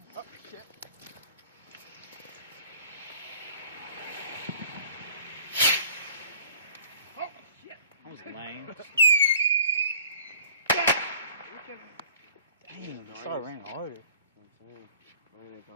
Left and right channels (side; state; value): both; inverted; correlation -0.48